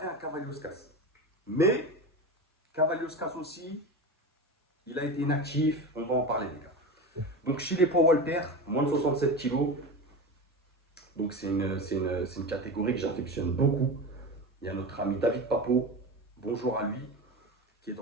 un Cavalioskas. Mais Cavalioskas aussi, il a été inactif, on va en parler, les gars. Donc chez les poids Walter, moins de 67 kilos, donc c'est une catégorie que j'affectionne beaucoup. Il y a notre ami David Papo, bonjour à lui, qui est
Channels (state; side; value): normal; both; correlation 0.25